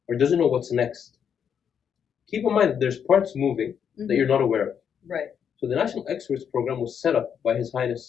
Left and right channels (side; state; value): right; quieter; 7.8 dB